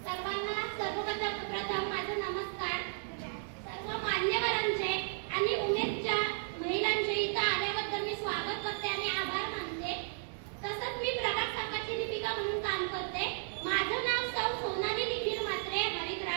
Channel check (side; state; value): left; silent; digital silence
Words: सर्वप्रथम माझा नमस्कार। सर्व मान्यवरांचे आणि उमेदच्या महिलांचे इथं आल्याबद्दल मी स्वागत करते आणि आभार मानते। तसंच मी प्रभाग संघाची लिपिका म्हणून काम करते। माझं नाव सौ सोनाली निखिल म्हात्रे